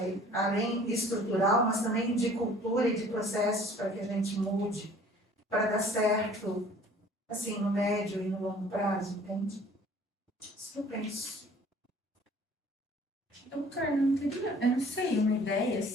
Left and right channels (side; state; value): both; normal; correlation 0.52